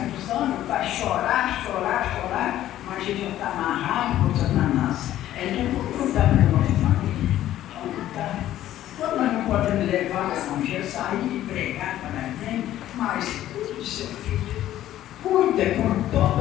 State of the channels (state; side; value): quieter; right; 13.0 dB